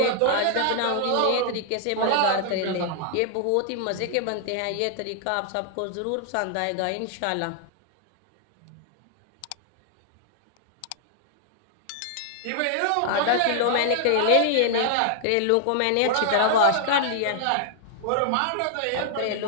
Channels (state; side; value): different; both; correlation -0.01